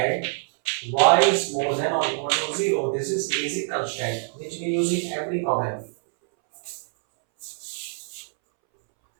Y is more than or equal to 0. This is basic constant which we use in every problem.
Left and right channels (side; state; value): left; silent; 62 dB below the other